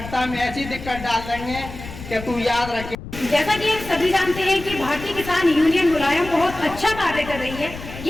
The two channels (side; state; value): left; noise; rumble, 12 dB below the sound